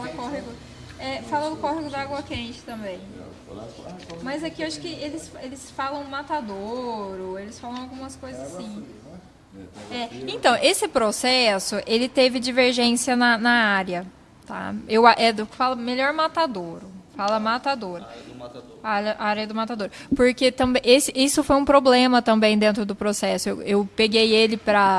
córrego, fala do córrego da água quente também. Mas aqui eu acho que eles falam matadouro, eles falam algumas coisas assim. Então, esse processo, ele teve divergência na área, tá? Fala melhor matadouro, fala matadouro. A área do matador. Porque também isso foi um problema também dentro do processo. Eu peguei ele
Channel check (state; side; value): identical; both; correlation 1.00